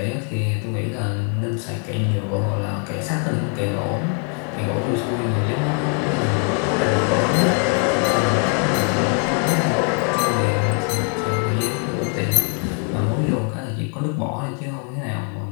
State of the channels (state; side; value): quieter; right; 38.9 dB